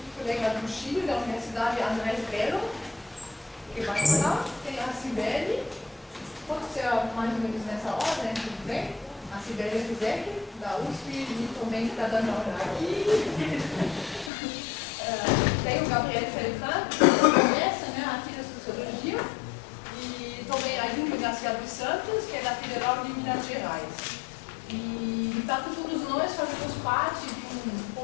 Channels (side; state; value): right; drops out; at 14.3 s